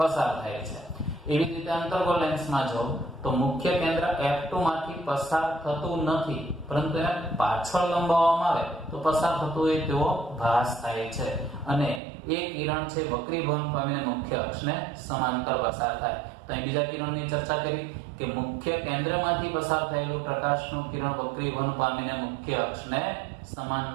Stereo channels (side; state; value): left; drops out; at 12.0 s